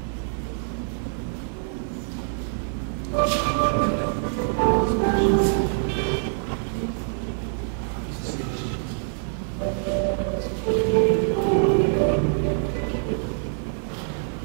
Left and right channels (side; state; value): left; silent; digital silence